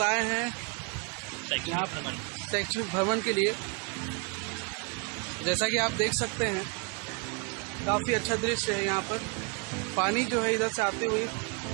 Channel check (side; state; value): left; quieter; 31.7 dB